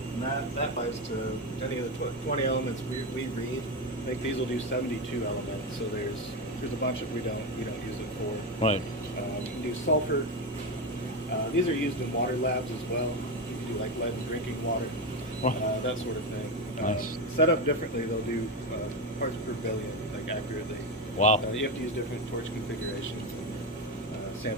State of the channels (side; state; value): both; normal; correlation 0.14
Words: And that applies to any of the 20 elements we read. I think these will do 72 elements, so there's a bunch of we don't use it for. Right. You can do sulfur. These are used in water labs as well. You can do like lead in drinking water, that sort of thing. Nice. Set up differently, they'll do parts per billion, like accurately. Wow. You have to use different torch configurations and